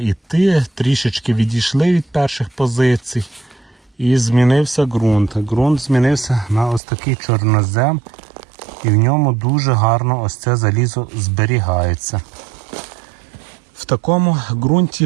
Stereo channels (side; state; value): left; drops out; at 6.8 s